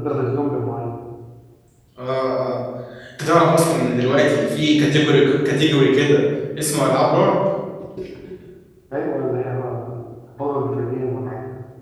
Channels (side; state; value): both; identical; correlation 1.00